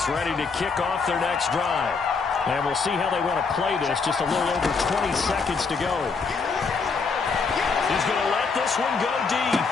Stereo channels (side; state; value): right; quieter; 4.8 dB